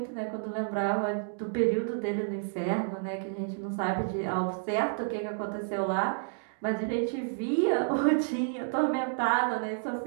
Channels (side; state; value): left; silent; digital silence